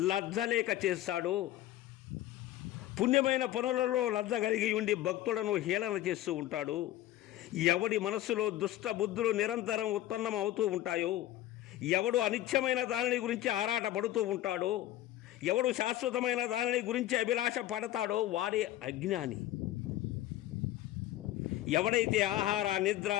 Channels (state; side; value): quieter; right; 14.4 dB